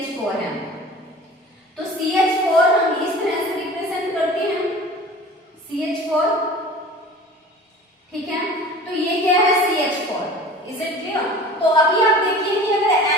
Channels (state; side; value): normal; both; correlation 0.41